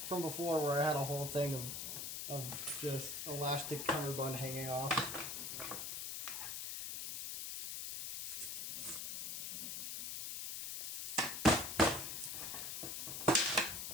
before, where I had a whole thing of just elastic cummerbund hanging off.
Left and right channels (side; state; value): left; noise; hiss, 4 dB below the sound